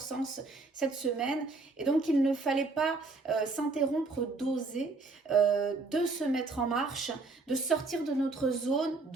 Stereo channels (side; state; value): left; quieter; 3.7 dB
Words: cette semaine. Et donc il ne fallait pas s'interrompre d'oser, de se mettre en marche, de sortir de notre zone